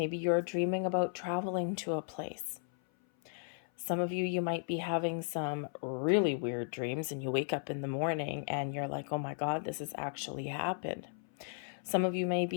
you're dreaming about traveling to a place. Some of you might be having some really weird dreams and you wake up in the morning and you're like, oh my God, this has actually happened. Some of you may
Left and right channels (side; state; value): right; silent; 54 dB below the other